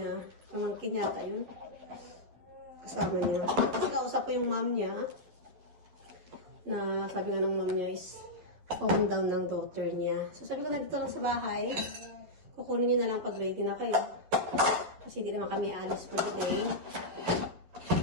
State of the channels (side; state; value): left; late; 11 ms